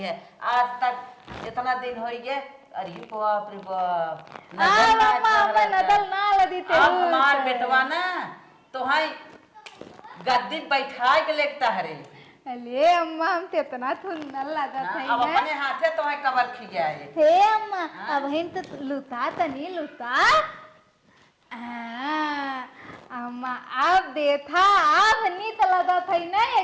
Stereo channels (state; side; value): identical; both; correlation 1.00